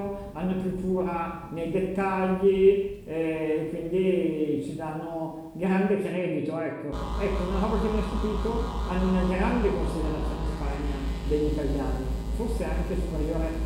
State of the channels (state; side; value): identical; both; correlation 1.00